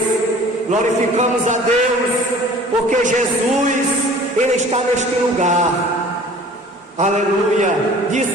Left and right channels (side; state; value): both; normal; correlation 0.47